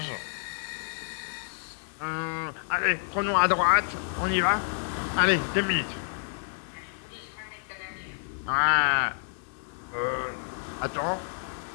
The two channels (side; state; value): right; silent; digital silence